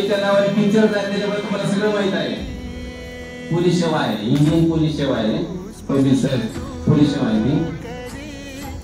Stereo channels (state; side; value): identical; both; correlation 1.00